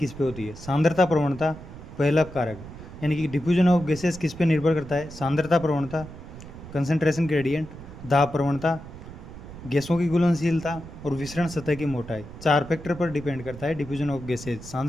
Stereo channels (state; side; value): noise; right; rumble, 14 dB below the sound